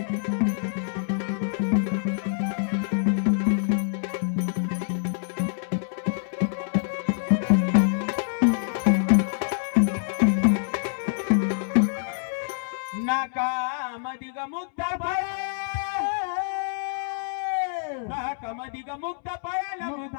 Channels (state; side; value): silent; right; 61 dB below the other